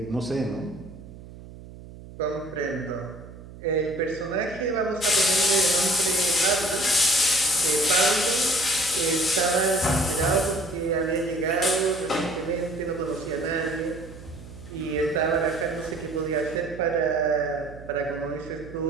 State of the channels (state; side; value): noise; right; hum, 16 dB below the sound